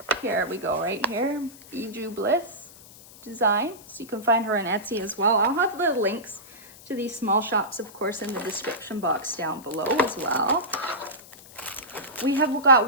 Here we go, right here. Bijou Bliss design. So you can find her on Etsy as well. I'll have the links to these small shops, of course, in the description box down below as well. We have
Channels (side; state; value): left; noise; hiss, 20 dB below the sound